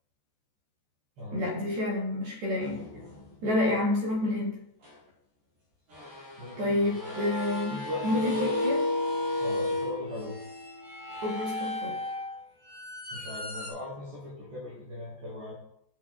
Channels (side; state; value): left; late; 14 ms